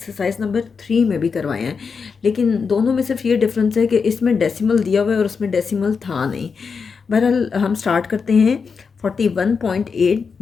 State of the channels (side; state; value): right; quieter; 5.5 dB